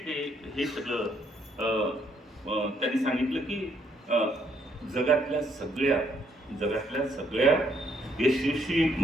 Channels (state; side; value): normal; both; correlation 0.71